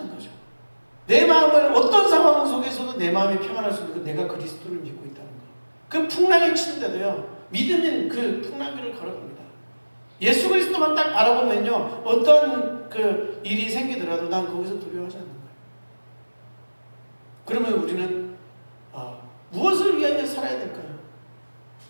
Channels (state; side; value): inverted; both; correlation -1.00